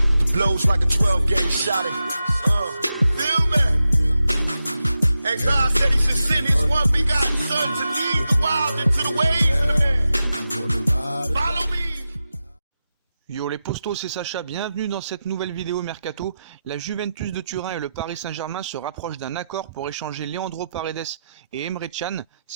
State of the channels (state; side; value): inverted; both; correlation -0.90